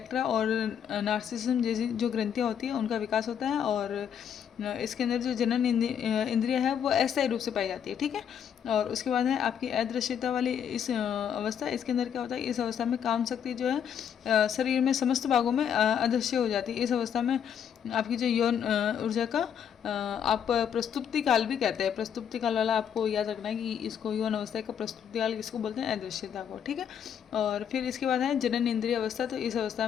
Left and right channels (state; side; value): quieter; right; 8.4 dB